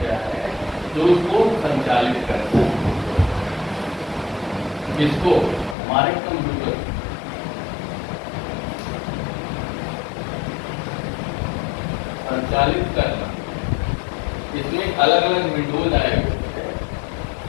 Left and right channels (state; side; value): drops out; right; at 5.8 s